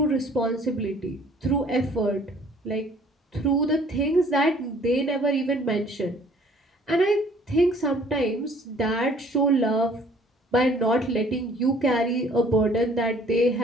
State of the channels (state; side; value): normal; both; correlation 0.56